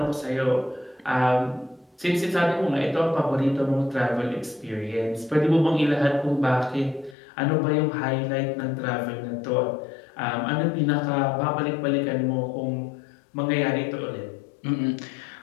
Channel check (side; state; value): right; drops out; at 7.2 s